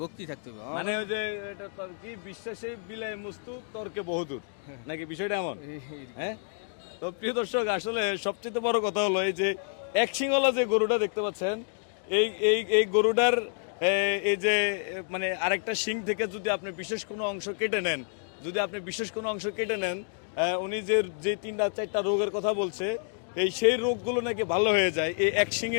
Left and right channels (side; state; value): right; silent; 59 dB below the other